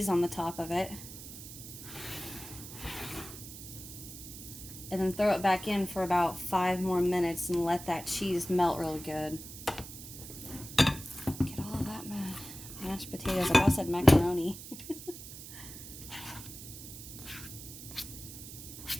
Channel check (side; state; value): right; noise; hiss, 12 dB below the sound